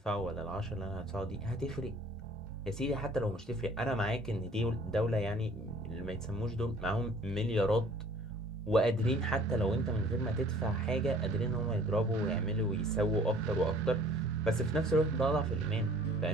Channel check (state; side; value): normal; both; correlation 0.53